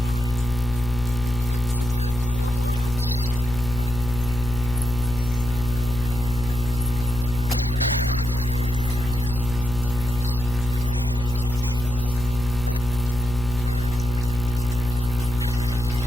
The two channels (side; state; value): left; noise; hum, 8 dB below the sound